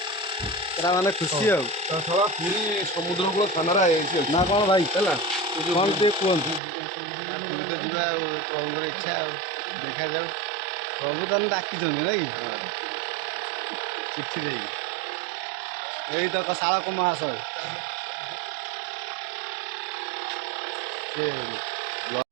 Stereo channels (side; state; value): left; drops out; at 6.6 s